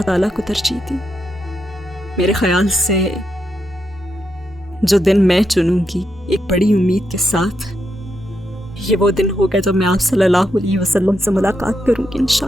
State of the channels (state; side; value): normal; both; correlation 0.83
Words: تعالیٰ کو ترجیح دی. میرے خیال سے جو دن میں چنوں گی ایک بڑی امید کے ساتھ, یہ وہ دن ہوگا جب میں آپ صلی اللہ علیہ وسلم سے ملاقات کروں گی